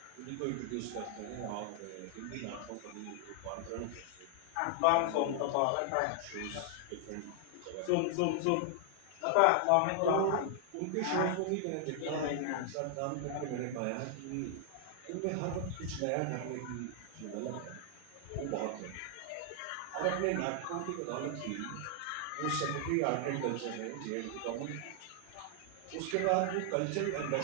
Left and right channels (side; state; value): both; different; correlation 0.00